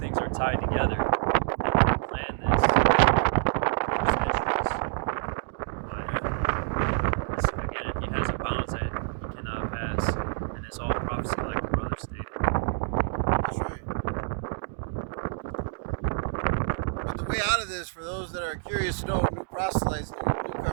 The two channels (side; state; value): left; silent; digital silence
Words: are tied together. And he planned this for centuries. But way out of this, for those that are curious to know, new proselytes,